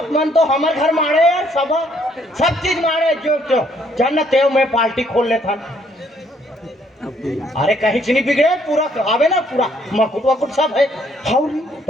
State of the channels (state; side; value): normal; both; correlation 0.67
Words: मन तो हमारे घर मारे यार सब चीज मारे जो जन तेव में पार्टी खोल लेता अरे कहीं से नहीं बिगड़े पूरा आवे ना पूरा मकुट वकुट सब है